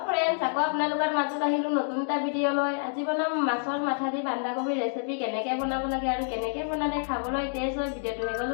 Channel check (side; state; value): right; silent; digital silence